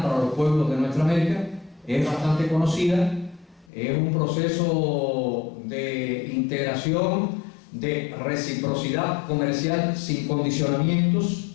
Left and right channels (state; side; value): drops out; right; at 3.7 s